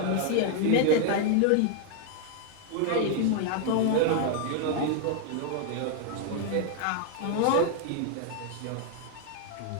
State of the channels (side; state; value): both; different; correlation 0.00